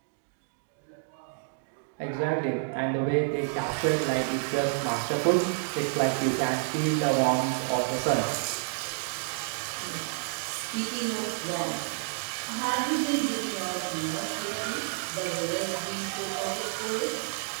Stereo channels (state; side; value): silent; left; digital silence